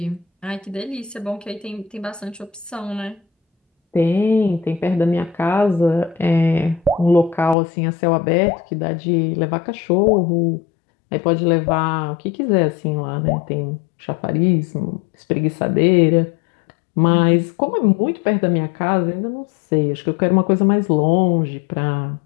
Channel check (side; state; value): right; drops out; at 7.6 s